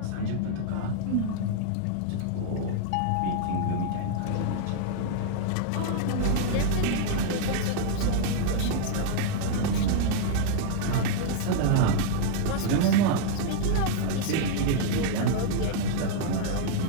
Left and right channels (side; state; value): both; different; correlation -0.01